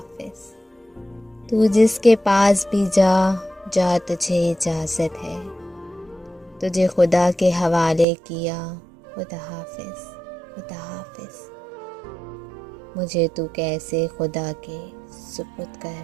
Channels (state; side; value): drops out; left; at 8.1 s